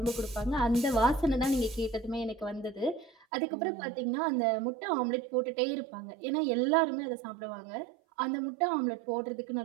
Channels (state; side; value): drops out; left; at 3.1 s